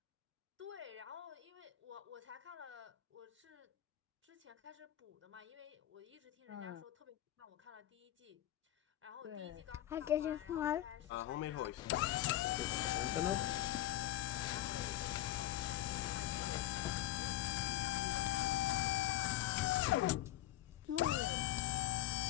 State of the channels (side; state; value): right; quieter; 14.1 dB